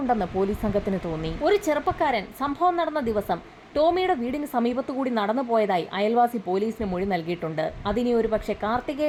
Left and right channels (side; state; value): both; identical; correlation 1.00